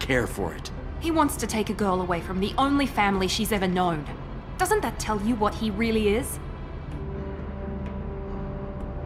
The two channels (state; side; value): identical; both; correlation 1.00